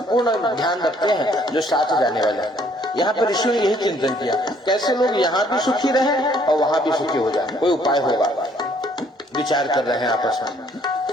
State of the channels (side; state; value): both; normal; correlation 0.63